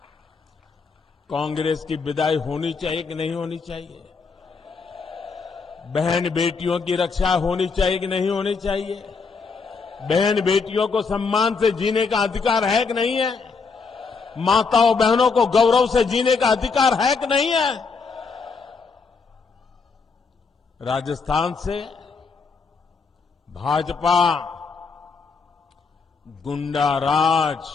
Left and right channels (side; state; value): right; quieter; 4.9 dB